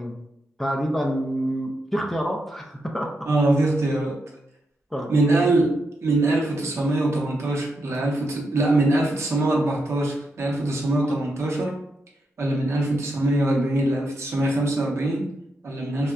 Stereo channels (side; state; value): both; normal; correlation 0.83